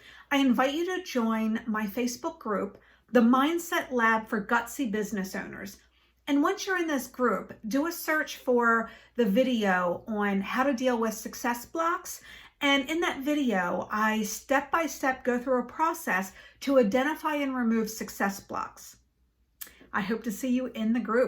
I invite you to join my Facebook group, the Mindset Lab for Gutsy Business Owners. And once you're in this group, do a search for the video on how to deal with success blocks And in that video, I step by step go through a process to identify and remove success blocks. I hope to see you in the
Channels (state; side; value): identical; both; correlation 1.00